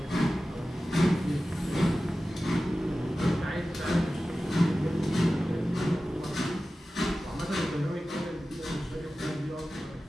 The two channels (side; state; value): both; normal; correlation 0.95